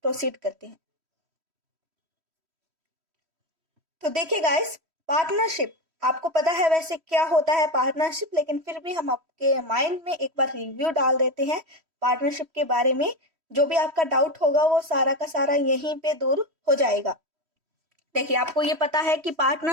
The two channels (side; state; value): left; late; 3.1 ms